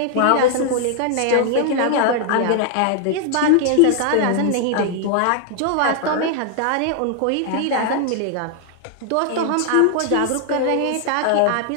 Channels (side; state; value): both; different; correlation 0.00